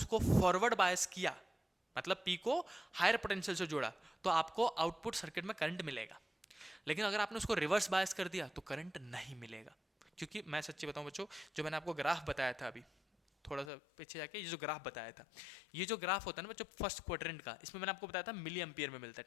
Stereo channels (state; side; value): drops out; right; at 13.7 s